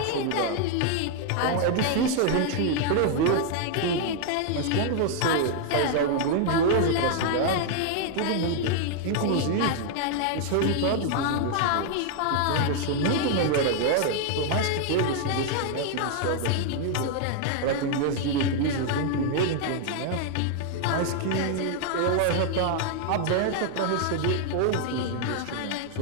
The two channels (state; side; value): different; both; correlation 0.00